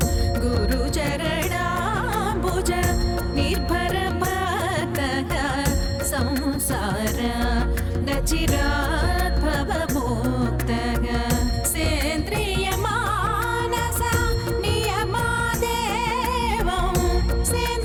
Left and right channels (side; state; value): both; identical; correlation 1.00